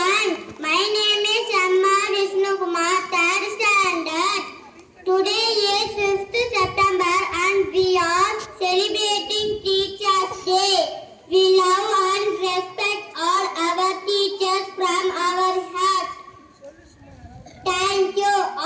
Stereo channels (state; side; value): identical; both; correlation 1.00